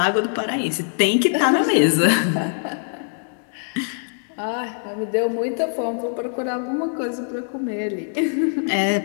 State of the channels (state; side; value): silent; right; digital silence